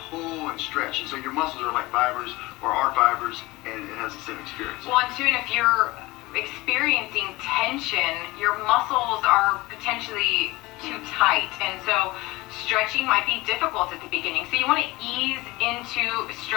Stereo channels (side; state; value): right; quieter; 20.9 dB